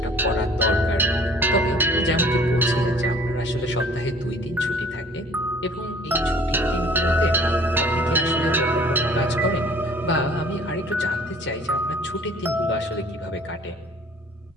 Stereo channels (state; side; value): normal; both; correlation 0.52